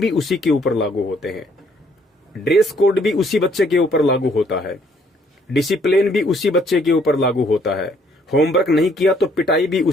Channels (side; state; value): both; normal; correlation 0.65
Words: उसी के ऊपर लागू होते हैं, ड्रेस कोड भी उसी बच्चे के ऊपर लागू होता है, डिसिप्लिन भी उसी बच्चे के ऊपर लागू होता है, होमवर्क नहीं किया तो पिटाई भी